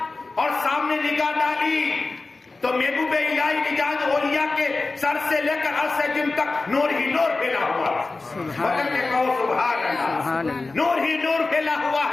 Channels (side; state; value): right; quieter; 3.6 dB